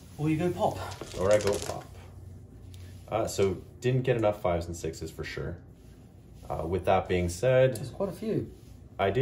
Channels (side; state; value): both; identical; correlation 1.00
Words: Or you go pop. Or I go pop. So didn't get enough 5s and 6s for sure. With that being said, There's quite a few. I